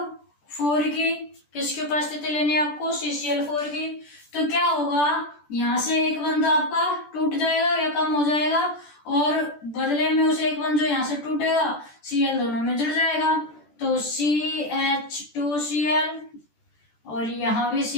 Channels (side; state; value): right; late; 14 ms